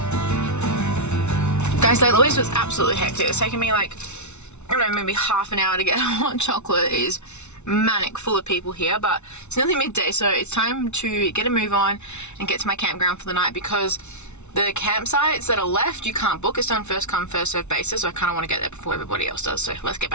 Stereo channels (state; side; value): late; right; 0.82 ms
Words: 2. Guys, Lake Louise was absolutely hectic. It's taken me like, I don't know, maybe half an hour to get hot chocolate. It is manic, full of people here, but it's nearly midday, so it's time to get a move on and get to my campground for the night because the campsites that are left, you can't book. It's done first come, first served basis, so I kind of want to get there before everybody else does. So let's get